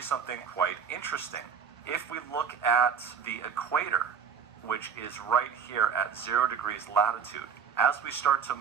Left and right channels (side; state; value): left; quieter; 7.0 dB